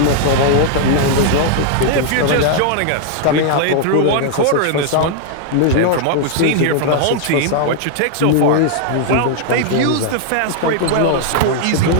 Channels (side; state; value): both; different; correlation 0.00